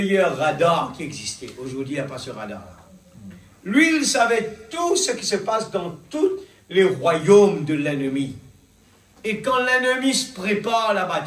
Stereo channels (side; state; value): both; identical; correlation 1.00